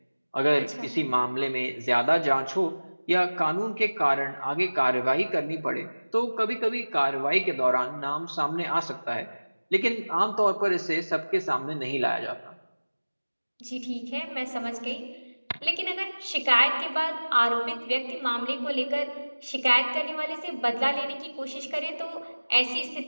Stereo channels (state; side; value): inverted; both; correlation -1.00